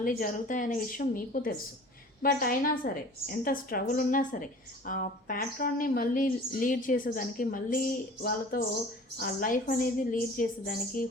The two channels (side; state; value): both; normal; correlation 0.45